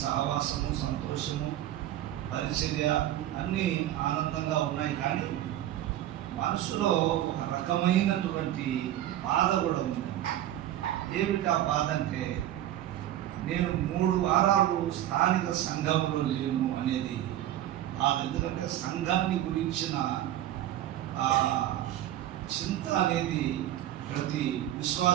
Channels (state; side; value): quieter; left; 12.9 dB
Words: సహవాసము, సంతోషము, పరిచర్య అన్నీ ఆనందంగా ఉన్నాయి. కానీ మనసులో ఒక రకమైనటువంటి బాధ కూడా ఉంది. ఏమిటి ఆ బాధ అంటే, నేను 3 వారాలు స్థానిక సంఘంలో లేను అనేది బాధ. ఎందుకంటే సంఘాన్ని గురించిన చింత అనేది ప్రతి